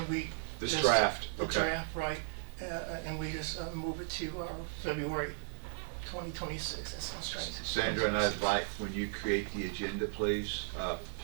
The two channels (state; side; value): silent; left; digital silence